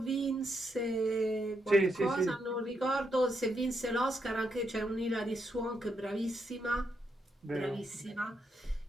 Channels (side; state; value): both; normal; correlation 0.80